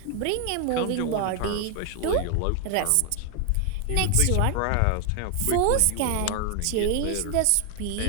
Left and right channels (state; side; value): different; both; correlation 0.00